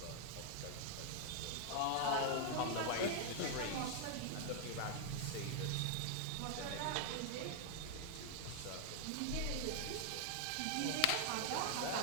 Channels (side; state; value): both; different; correlation 0.00